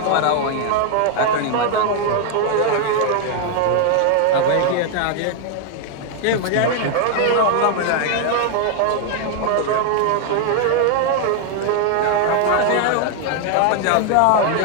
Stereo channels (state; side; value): different; both; correlation 0.00